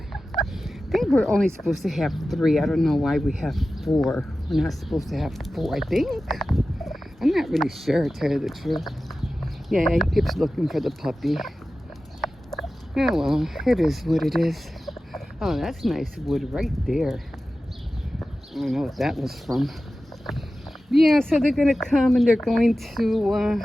think we're only supposed to have 3. I don't know why we have 4. We're not supposed to have 4, I think. I'm not really sure, to tell you the truth. Yeah, he keeps looking for the puppy. Oh, well, it is what it is. Oh, that's nice wood right there. I don't know what that was from. Yeah, so they're going to come and they're going to,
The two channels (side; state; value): both; normal; correlation 0.94